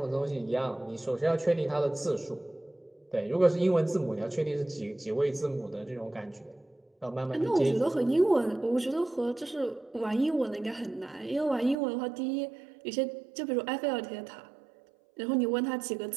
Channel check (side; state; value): left; drops out; at 11.8 s